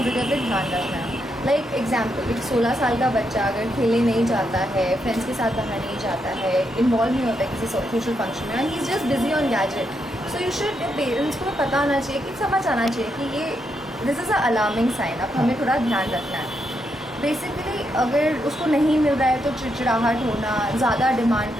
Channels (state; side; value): normal; both; correlation 0.81